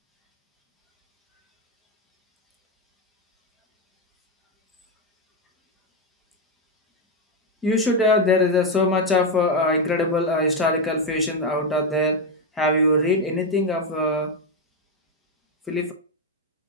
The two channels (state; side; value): normal; both; correlation 0.06